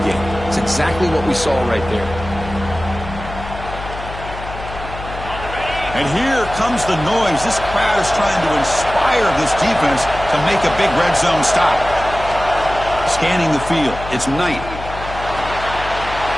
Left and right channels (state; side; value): noise; left; hum, 11 dB below the sound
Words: game. It's exactly what we saw right there. And here comes the noise. This crowd is trying to inspire this defense to make a big red zone stop. Scanning the field. It's Knight.